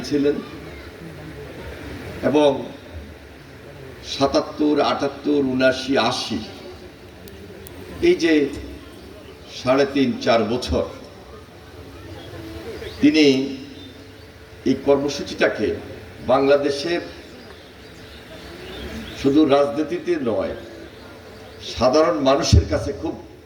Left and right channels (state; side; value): identical; both; correlation 1.00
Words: এবং 77, 78, 79, 80 এই যে 3.5-4 বছর তিনি এই কর্মসূচিটাকে বাংলাদেশের শুধু রাজনীতিতে নয় সাধারণ মানুষের কাছে খুব